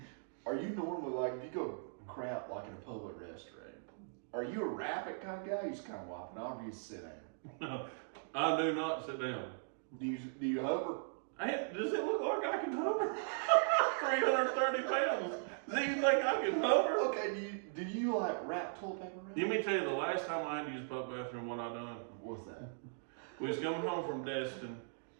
normally like, if you go crap like in a public restaurant, are you a rapid kind of guy? You just kind of wop it off, or you just sit down? I do not sit down. Do you hover? Does it look like I can hover? 330 pounds. Do you think I can hover? Okay, do you like wrap toilet paper around? Let me tell you, the last time I had to use a public bathroom, what I done. What's that? We was coming home from Destin,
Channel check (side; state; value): left; silent; digital silence